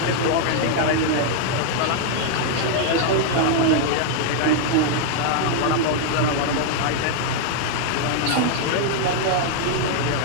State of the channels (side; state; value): both; different; correlation 0.00